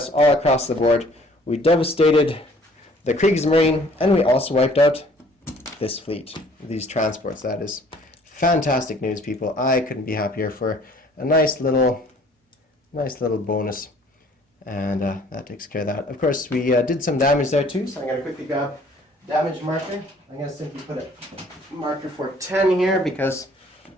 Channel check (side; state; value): both; normal; correlation 0.56